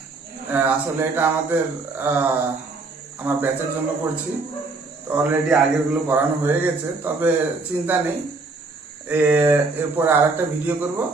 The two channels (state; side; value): quieter; left; 3.7 dB